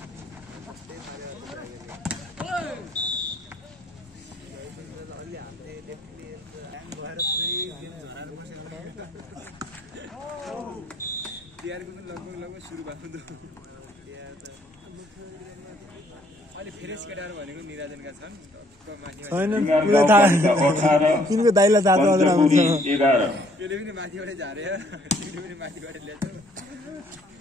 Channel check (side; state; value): both; normal; correlation 0.64